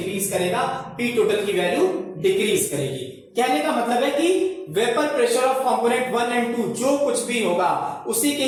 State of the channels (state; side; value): identical; both; correlation 1.00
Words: करेगा, P टोटल की वैल्यू डिक्रीज करेगी। कहने का मतलब है कि vapour pressure of component 1 and 2 जो कुछ भी होगा उसी के